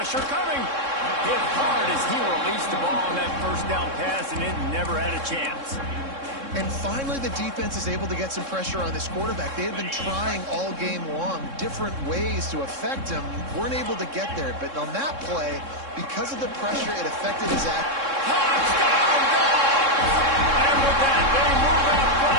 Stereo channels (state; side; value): late; left; 3.6 ms